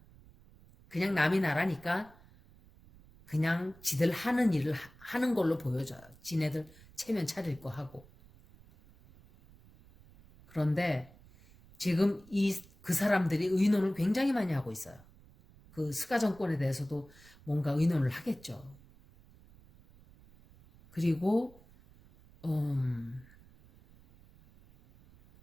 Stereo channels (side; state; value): right; noise; rumble, 25 dB below the sound